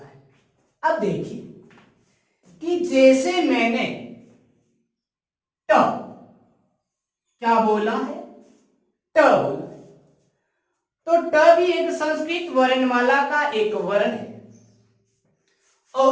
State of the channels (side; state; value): both; identical; correlation 1.00